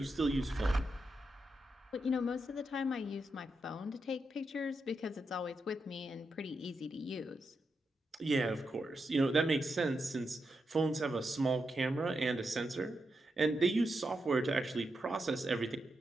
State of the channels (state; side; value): normal; both; correlation 0.85